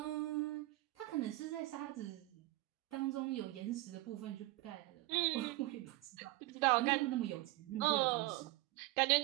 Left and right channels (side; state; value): left; quieter; 19.2 dB